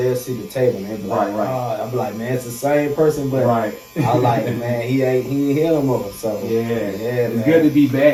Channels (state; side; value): identical; both; correlation 1.00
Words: they'll see the table, man. Like, I'll be like, man, it's the same person, but I like, man, he ain't here no more. So it's man. Good to be